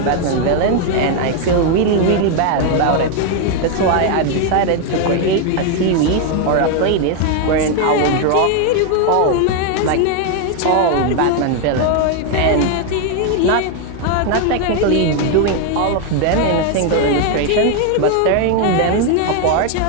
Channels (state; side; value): different; both; correlation 0.01